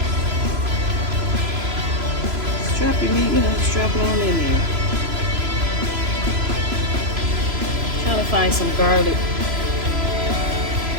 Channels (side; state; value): left; late; 3.0 ms